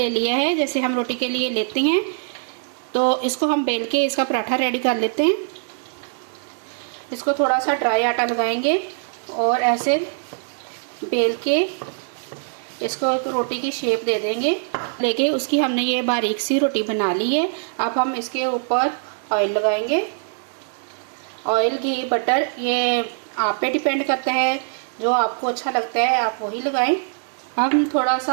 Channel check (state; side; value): silent; left; digital silence